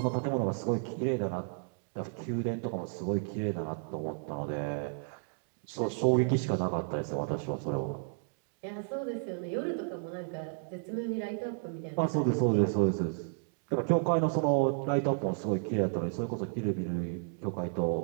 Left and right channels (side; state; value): left; silent; 56 dB below the other